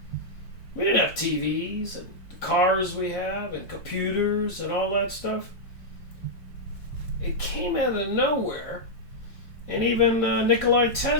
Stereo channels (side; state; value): right; late; 4.6 ms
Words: we didn't have TVs and the cars we have and computers and all that stuff. It came out of nowhere. And even Nikola